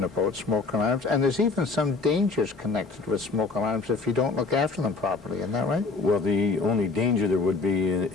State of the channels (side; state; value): right; quieter; 4.1 dB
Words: about smoke alarms, and there's even some dangers connected with smoke alarms if you don't look after them properly. Isn't that right? Well, the only danger there would be